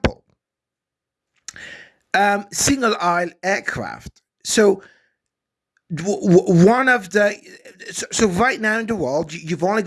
single aisle aircraft. So one of the so right now in the world, you've only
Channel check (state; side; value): identical; both; correlation 1.00